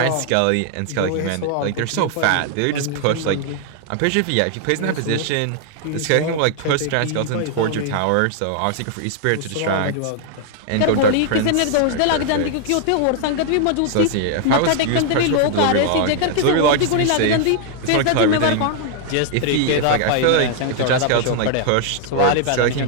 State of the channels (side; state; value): both; different; correlation 0.00